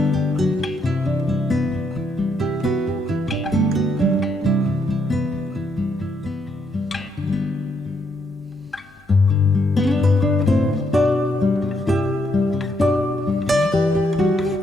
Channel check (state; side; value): normal; both; correlation 0.75